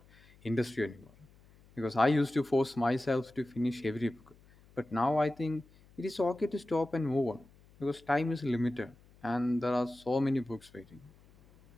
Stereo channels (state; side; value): noise; left; hum, 27 dB below the sound